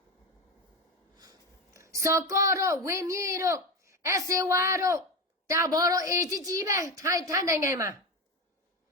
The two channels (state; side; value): normal; both; correlation 0.19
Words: စော်ကော့တော့ဝင်းမြေတော့အစေဝါတော့တာဘော်တော့အေကြီးပဲထိုင်းနိုင်ငံမှာ